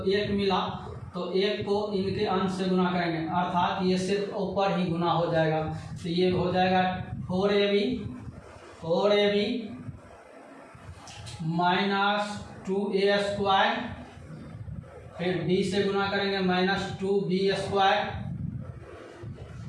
1 मिला तो 1 को इनके अंश से गुना करेंगे अर्थात ये सिर्फ ऊपर ही गुना हो जाएगा तो ये हो जाएगा 4ab माइनस 2a स्क्वायर फिर b से गुना करेंगे माइनस 2b स्क्वायर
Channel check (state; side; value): identical; both; correlation 1.00